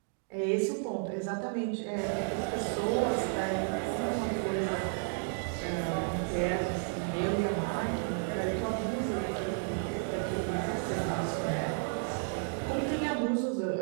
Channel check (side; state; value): left; silent; 56 dB below the other